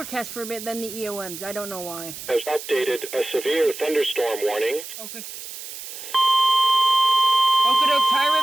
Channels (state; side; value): noise; right; hiss, 11 dB below the sound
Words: for a bit, then the EOMs. I don't know why. Has updated a severe thunderstorm warning. Okay. Okotok, Thai